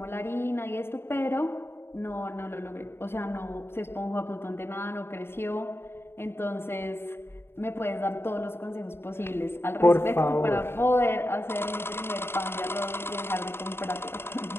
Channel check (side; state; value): right; late; 0.11 ms